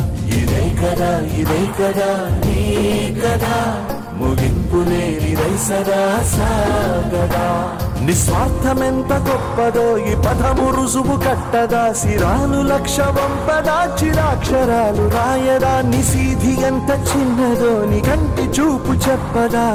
ఇదే కదా నీ కదా ముగింపు లేనిదై సదా సాగదా నిస్వార్థమెంత గొప్పదో ఈ పదము రుజువు కట్టదా సిరాలు లక్ష వంపదా చిరాక్షరాలు రాయదా నిశీధి ఎంత చిన్నదో నీ కంటి చూపు చెప్పదా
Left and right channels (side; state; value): both; identical; correlation 1.00